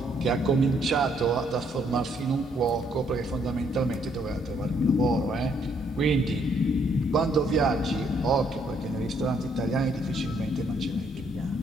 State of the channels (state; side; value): normal; both; correlation 0.69